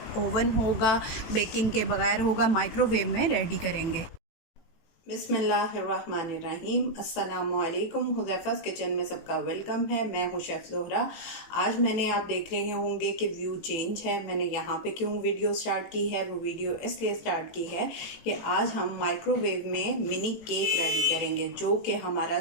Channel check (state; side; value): late; right; 18 ms